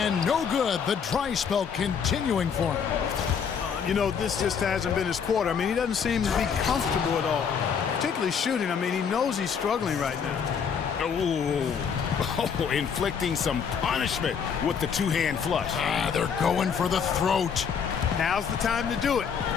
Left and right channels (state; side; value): quieter; right; 6.8 dB